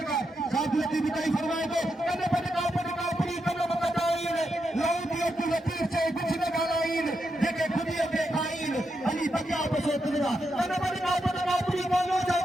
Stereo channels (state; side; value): normal; both; correlation 0.84